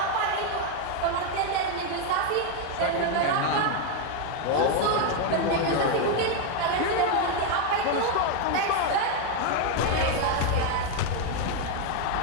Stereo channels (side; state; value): both; different; correlation 0.01